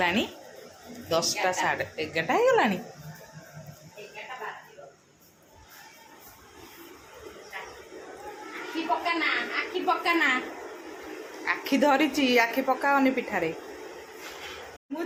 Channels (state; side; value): identical; both; correlation 1.00